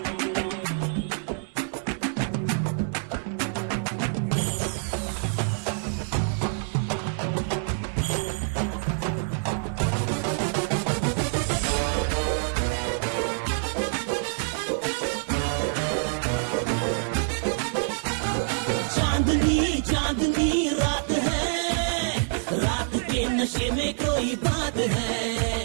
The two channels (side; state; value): left; silent; digital silence